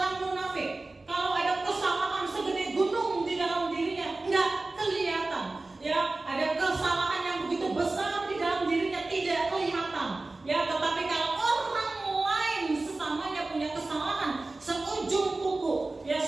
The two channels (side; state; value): left; quieter; 3.2 dB